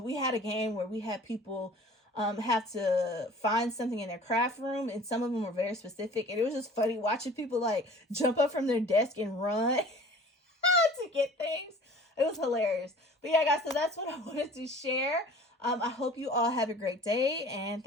had a game where we had people have to find something in their craft room, and some of them were very specific. And it was just funny watching people like jump up from their desk and run to get things. It was hilarious. But yeah, guys, so that's what I wanted to share. I hope you all have a great day, and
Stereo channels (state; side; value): normal; both; correlation 0.46